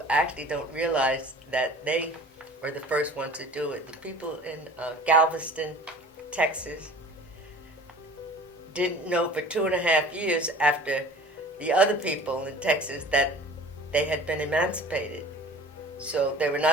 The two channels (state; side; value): normal; both; correlation 0.44